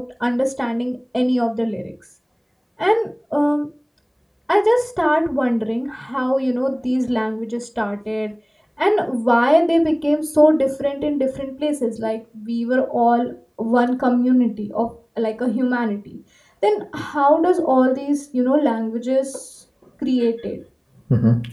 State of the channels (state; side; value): identical; both; correlation 1.00